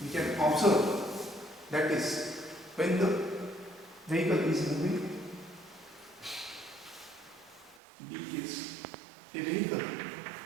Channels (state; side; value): drops out; left; at 7.8 s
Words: we can observe, that is when the vehicle is moving. B case, a vehicle